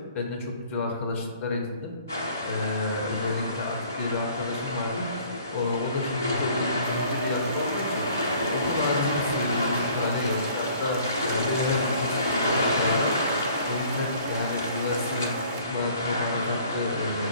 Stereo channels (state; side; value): inverted; both; correlation -0.55